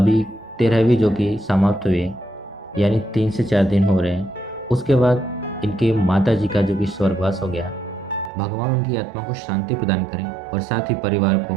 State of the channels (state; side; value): drops out; left; at 8.3 s